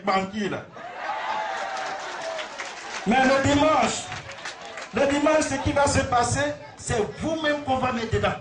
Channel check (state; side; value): identical; both; correlation 1.00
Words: là. Mais le dimanche, ce qui va se passer, c'est vous-même qu'on va mettre dedans.